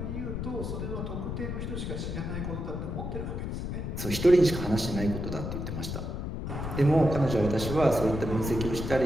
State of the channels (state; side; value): noise; left; rumble, 4 dB below the sound